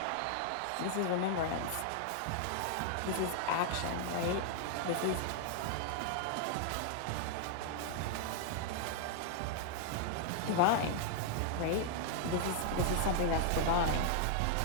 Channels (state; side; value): different; both; correlation -0.01